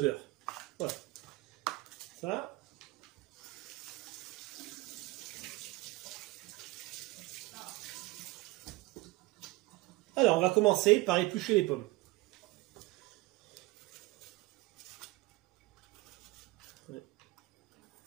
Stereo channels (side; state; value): left; quieter; 21.1 dB